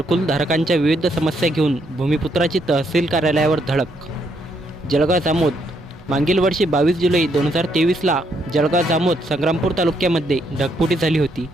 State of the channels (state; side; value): normal; both; correlation 0.74